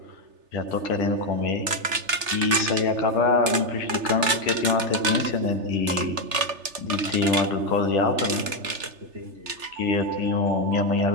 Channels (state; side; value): late; left; 3.3 ms